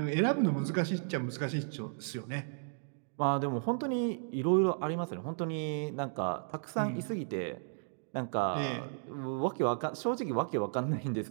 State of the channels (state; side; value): silent; left; digital silence